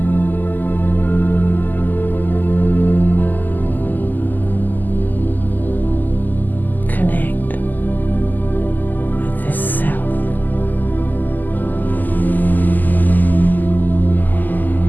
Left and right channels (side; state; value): right; late; 0.085 ms